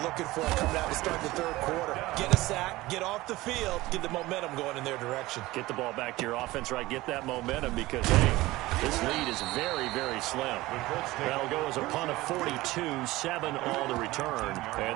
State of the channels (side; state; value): left; quieter; 18.8 dB